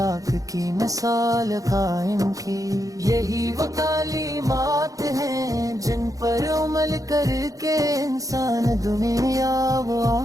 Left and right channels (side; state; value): left; late; 0.17 ms